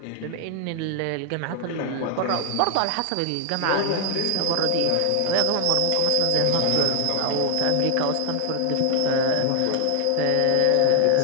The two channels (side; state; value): both; different; correlation 0.00